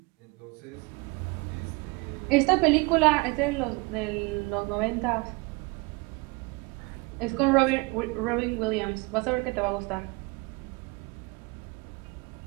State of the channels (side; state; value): left; quieter; 26.9 dB